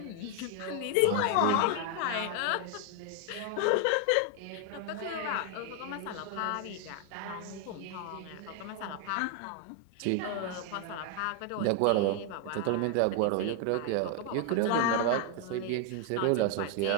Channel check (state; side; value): different; both; correlation 0.01